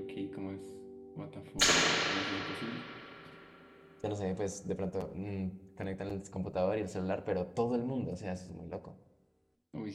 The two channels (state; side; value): identical; both; correlation 1.00